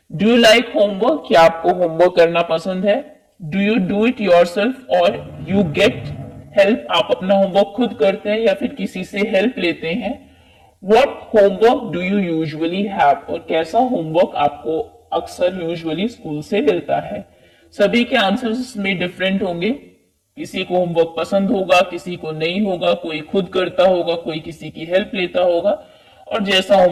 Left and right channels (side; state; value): both; identical; correlation 1.00